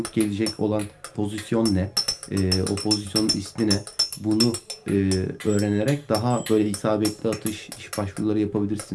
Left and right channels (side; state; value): both; identical; correlation 1.00